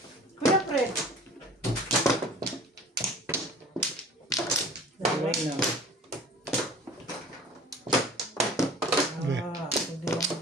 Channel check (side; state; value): both; normal; correlation 0.44